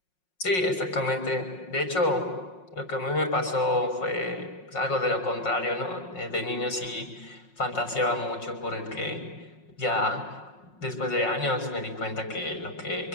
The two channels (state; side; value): late; right; 5.5 ms